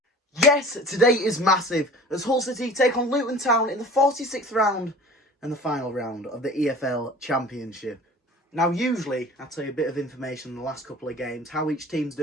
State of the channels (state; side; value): normal; both; correlation 0.42